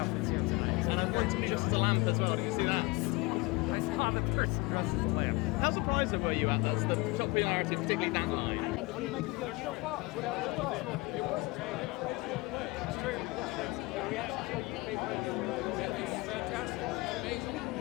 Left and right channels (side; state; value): right; quieter; 23.9 dB